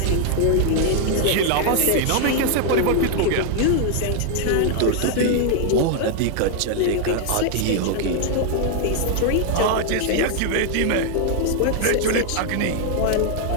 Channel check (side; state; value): both; different; correlation 0.00